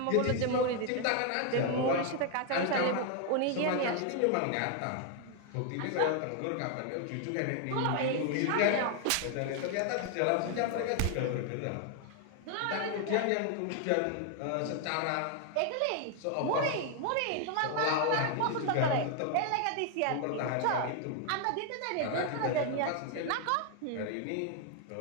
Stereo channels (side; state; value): both; different; correlation 0.00